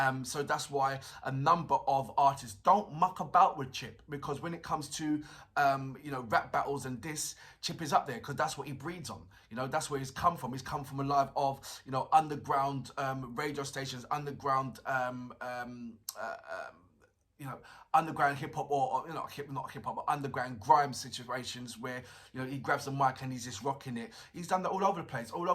So that's why a number of artists don't muck about with Chip, because when it comes to you know, rap battles and this, Chip is up there because that's what he breeds on. You know, that's where he's come from. He's come from a life of, you know, underground radio stations, underground you know, underground hip hop, or you know, not hip hop, but underground grime situations where, you know, he grabs the mic and he's just rocking it. He's done that all over the place, all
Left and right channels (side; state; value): both; identical; correlation 1.00